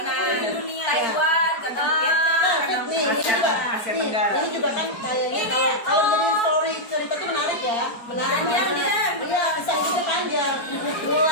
dunia. Taiwan, kadang Vietnam, kadang Nih, ini juga, Asia Tenggara. Ini juga kan kayaknya kalau jadi story cerita tuh menarik ya, menarik banget. Iya, kisah hidupnya panjang.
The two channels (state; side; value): late; right; 4.4 ms